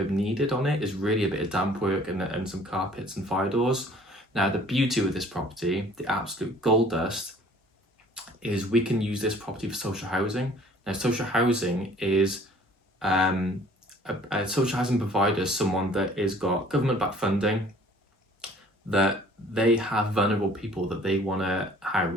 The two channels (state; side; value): normal; both; correlation 0.54